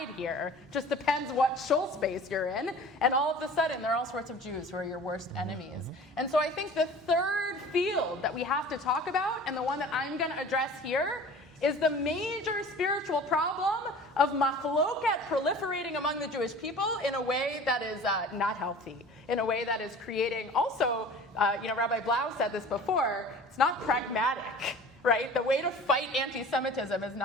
here, just depends what shul space you're in, and all of a sudden there are all sorts of Jews who are your worst enemies. And so I think the third field that we have to talk about, and the one that I'm going to address here, is the major spiritual problem of machloket proliferating among the Jewish people in a way that is not healthy, in a way that is creating also, Rabbi Blau said this before, it's not pragmatic, right? The way to fight anti-Semitism is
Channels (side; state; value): both; normal; correlation 0.42